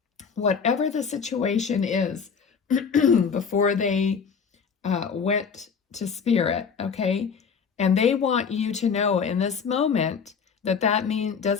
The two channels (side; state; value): right; quieter; 6.2 dB